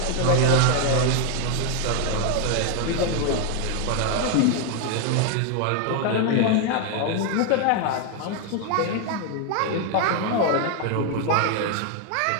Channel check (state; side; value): different; both; correlation 0.00